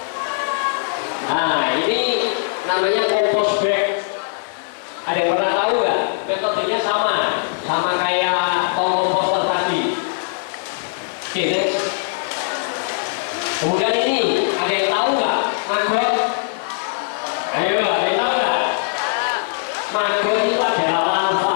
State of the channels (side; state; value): right; silent; digital silence